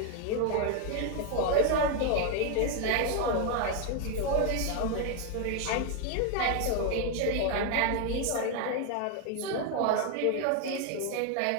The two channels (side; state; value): both; different; correlation 0.01